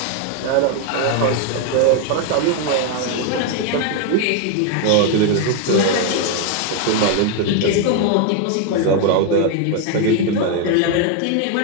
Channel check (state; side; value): different; both; correlation 0.01